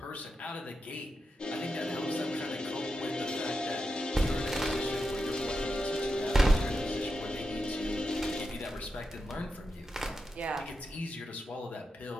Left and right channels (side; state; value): both; normal; correlation 0.88